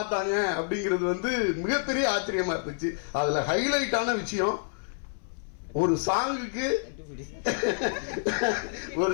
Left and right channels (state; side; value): silent; right; 59 dB below the other